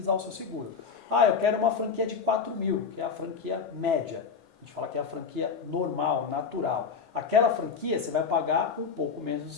o seu seguro. Eu quero uma franquia de 4.000, que é a franquia média. A gente fala que é a franquia normal, natural. aquela franquia você vai pagar um pouco menos de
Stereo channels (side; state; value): right; quieter; 5.8 dB